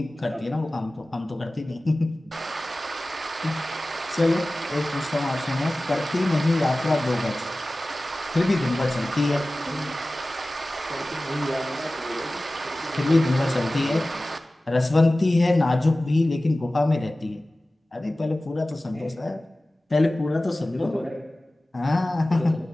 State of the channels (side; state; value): both; normal; correlation 0.97